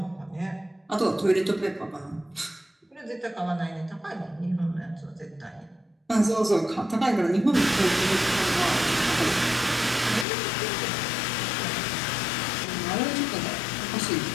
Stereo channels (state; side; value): drops out; right; at 10.2 s